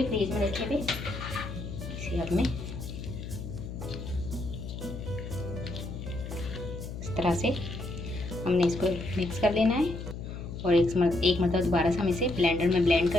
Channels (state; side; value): noise; left; hum, 8 dB below the sound